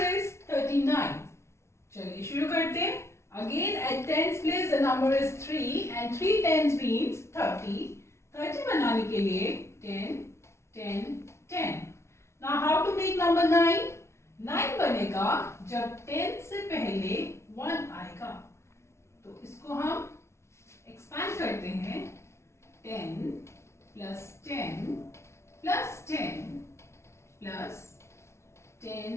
is 39. चलिए शुरू करते हैं। Again at tens place the number is 3 and 3 tens means 30. 30 बनाने के लिए 10 10 10. Now how to make number 9? 9 बनेगा जब 10 से पहले 1 आएगा। तो इसको हम एक्सपैंड करते हैं 10 plus 10 plus 10 plus 10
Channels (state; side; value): late; right; 0.13 ms